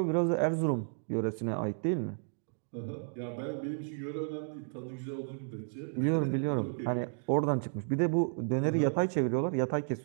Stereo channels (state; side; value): silent; left; digital silence